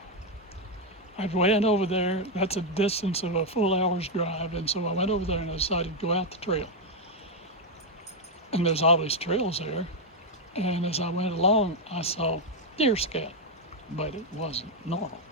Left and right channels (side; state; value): both; normal; correlation 0.02